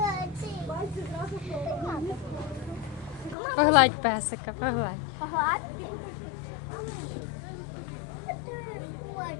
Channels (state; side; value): drops out; right; at 3.4 s